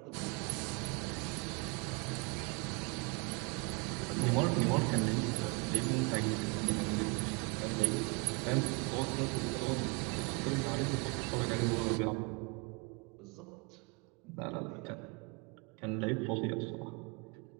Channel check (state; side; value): quieter; left; 30.7 dB